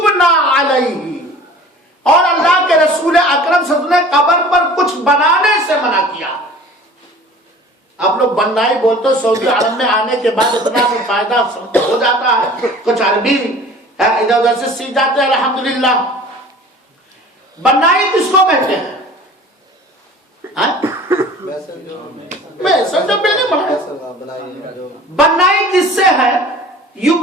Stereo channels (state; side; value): normal; both; correlation 0.44